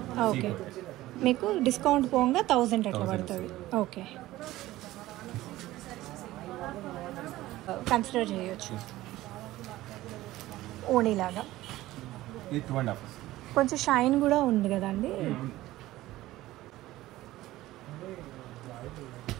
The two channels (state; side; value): quieter; left; 16.4 dB